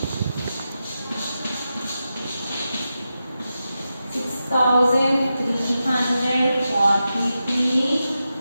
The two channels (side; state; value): both; inverted; correlation -0.90